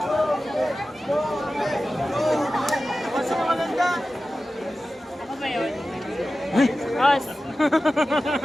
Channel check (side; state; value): both; normal; correlation 0.94